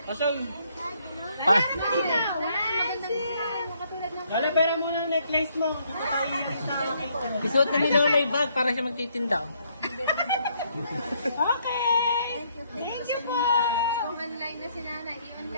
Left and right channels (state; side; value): inverted; both; correlation -0.70